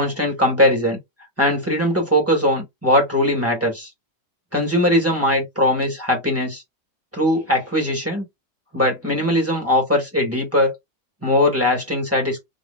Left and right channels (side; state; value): both; normal; correlation -0.02